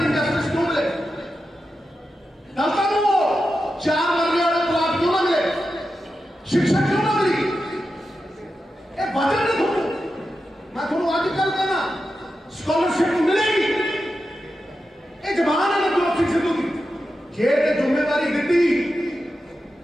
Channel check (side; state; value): both; normal; correlation 0.90